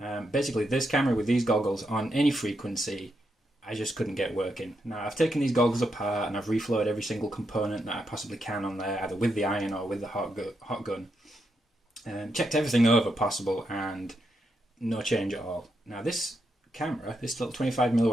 basically this camera with these goggles on any frequency, I just couldn't get working. Now I've taken these goggles apart and I've reflowed every single component that I possibly can on there, either with the iron or with the hot gun. Checked everything over possible and no change at all. Now this camera, this little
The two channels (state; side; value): normal; both; correlation 0.82